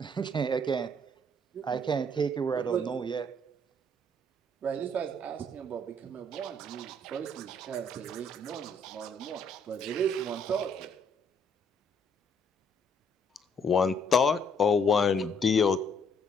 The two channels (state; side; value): normal; both; correlation 0.66